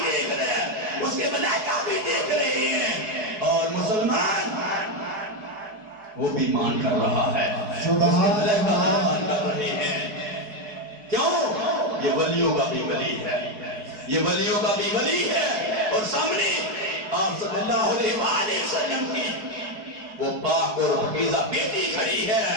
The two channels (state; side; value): late; left; 4.7 ms